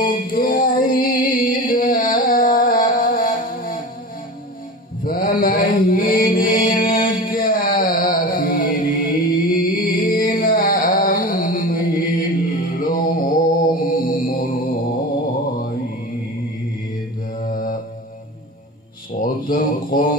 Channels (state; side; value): normal; both; correlation 0.31